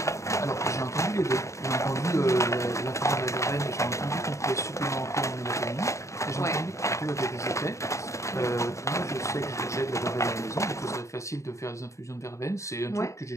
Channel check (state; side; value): late; right; 0.14 ms